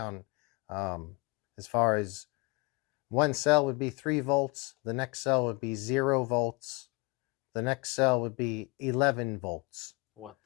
As far as one cell would be 3 volts, the next cell would be 0 volts, the next cell would be 11 volts. What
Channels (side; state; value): right; quieter; 27.8 dB